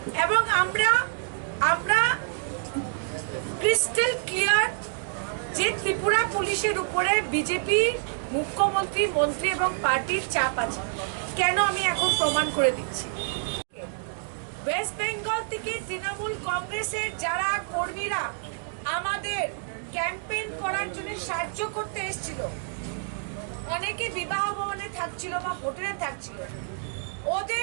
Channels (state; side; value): silent; left; digital silence